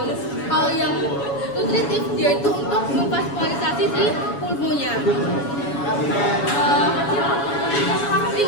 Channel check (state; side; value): late; right; 7.1 ms